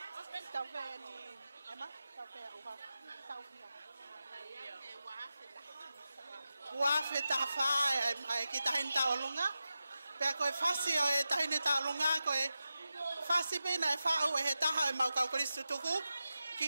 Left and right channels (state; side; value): inverted; both; correlation -0.92